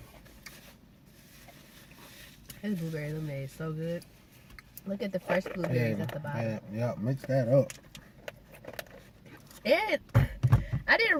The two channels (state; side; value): identical; both; correlation 1.00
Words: His blueberry lemonade is so good. Look at the fresh blueberries at the bottom. Yeah, mix that up. And I didn't